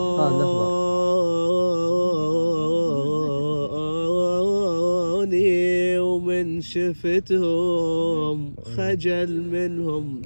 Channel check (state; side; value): inverted; both; correlation -1.00